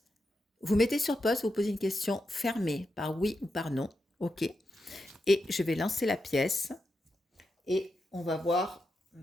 Vous mettez sur pause, vous posez une question fermée par oui ou par non. OK. Et je vais lancer la pièce. Et on va voir,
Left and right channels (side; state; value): both; normal; correlation 0.87